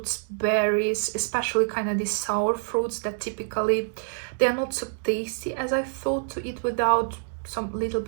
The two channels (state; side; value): silent; left; digital silence